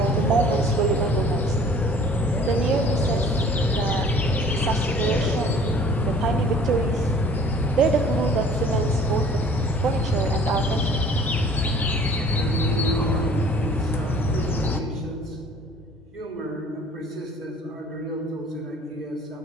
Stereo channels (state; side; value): normal; both; correlation 0.51